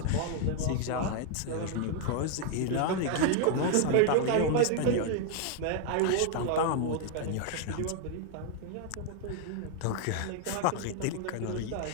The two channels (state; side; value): different; both; correlation 0.00